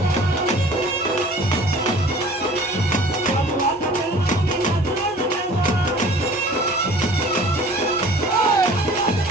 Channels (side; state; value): right; noise; hum, 29 dB below the sound